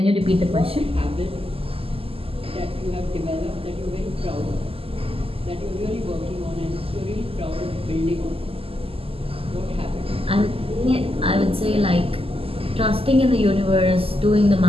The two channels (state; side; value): late; left; 0.28 ms